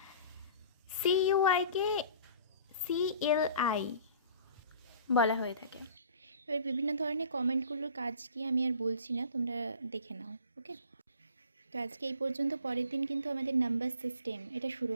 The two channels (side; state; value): both; inverted; correlation -0.47